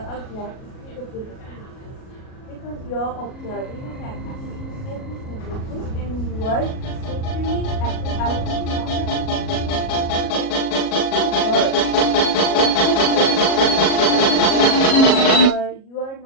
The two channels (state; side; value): late; right; 37 ms